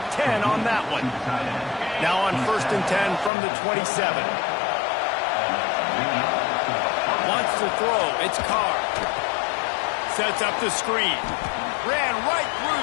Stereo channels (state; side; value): drops out; right; at 3.3 s